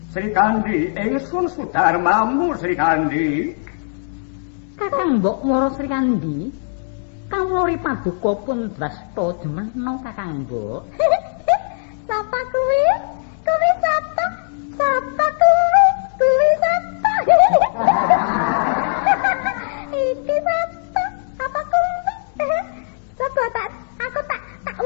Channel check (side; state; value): right; silent; digital silence